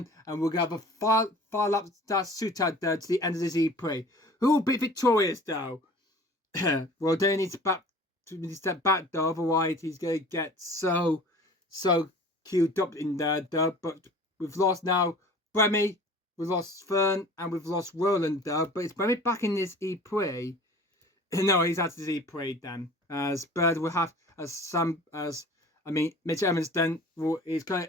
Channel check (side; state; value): both; normal; correlation 0.44